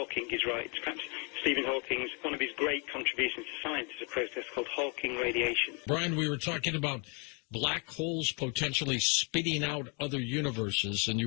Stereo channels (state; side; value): quieter; right; 34.9 dB